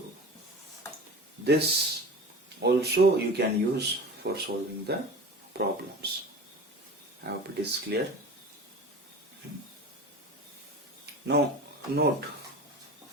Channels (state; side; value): normal; both; correlation 0.35